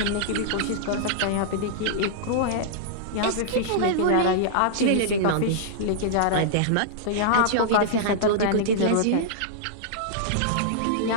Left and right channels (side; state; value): both; different; correlation -0.02